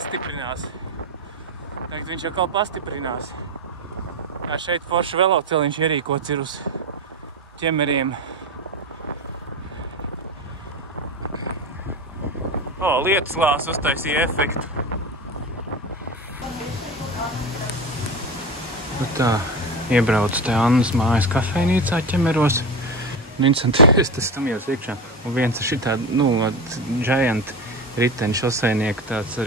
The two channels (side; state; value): both; normal; correlation 0.23